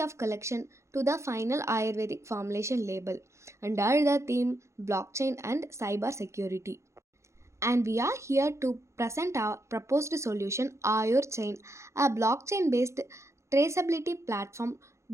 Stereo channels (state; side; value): late; left; 0.14 ms